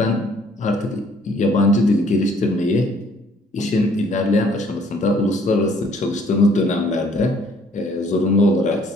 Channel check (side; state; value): both; normal; correlation 0.61